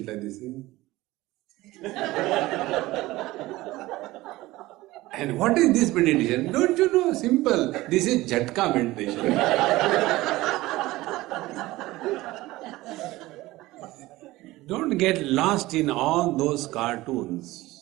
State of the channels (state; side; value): quieter; left; 18.4 dB